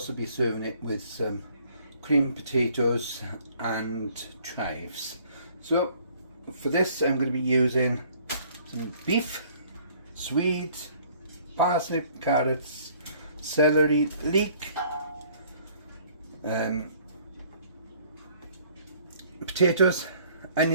be serving it with some creamed potatoes and chives. So for this I'm going to be using some beef, swede, parsnip, carrots, celery, leek, potatoes,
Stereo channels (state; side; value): inverted; both; correlation -0.59